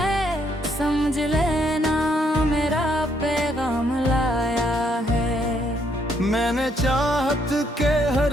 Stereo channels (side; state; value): both; normal; correlation 0.72